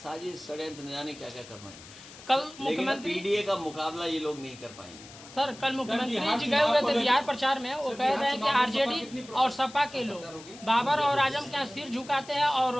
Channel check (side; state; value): left; noise; hiss, 18 dB below the sound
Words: षड्यंत्र, न जाने क्या क्या करना है। कल लेकिन मुख्यमंत्री पीडीए का मुकाबला ये लोग नहीं कर पाएंगे। सर कल मुख्यमंत्री जी गए हुए थे बिहार प्रचार में, वो कह रहे हैं कि आरजेडी और सपा के लोग बाबर और आजम के यहाँ सिर झुकाते हैं और